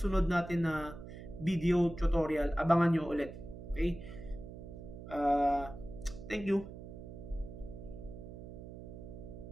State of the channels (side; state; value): right; noise; hum, 12 dB below the sound